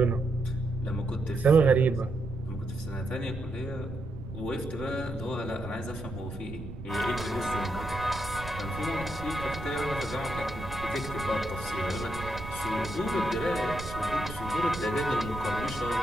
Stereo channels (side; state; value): right; noise; rumble, 11 dB below the sound